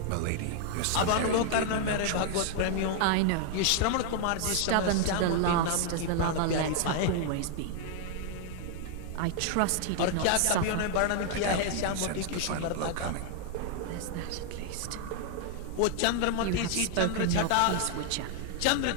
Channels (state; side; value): different; both; correlation 0.00